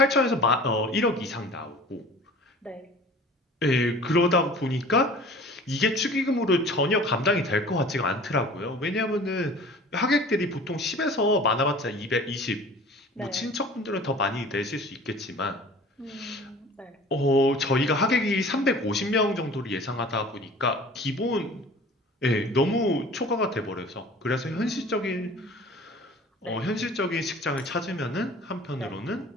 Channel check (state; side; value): normal; both; correlation 0.44